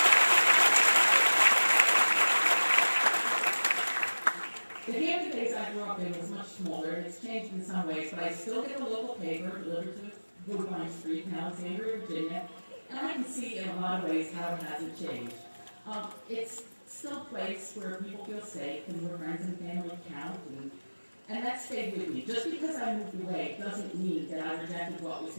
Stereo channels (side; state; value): both; inverted; correlation -1.00